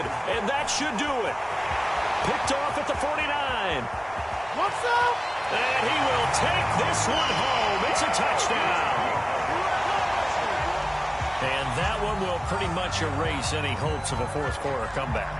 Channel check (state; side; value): identical; both; correlation 1.00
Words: and that should do it. Picked off at the 49. What's up? And he will take this one home. It's a touchdown. And that one will pretty much erase any hopes of a fourth quarter